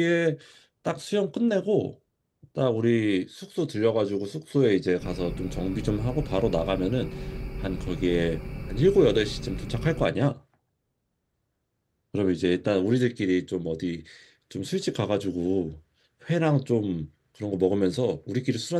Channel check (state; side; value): identical; both; correlation 1.00